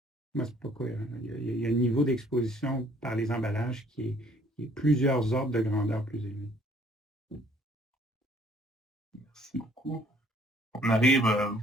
Moi, ce n'est pas cohérent. Il y a un niveau d'exposition par les emballages qui est plusieurs ordres de grandeur plus élevés. Merci beaucoup. On arrive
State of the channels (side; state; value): both; normal; correlation 0.60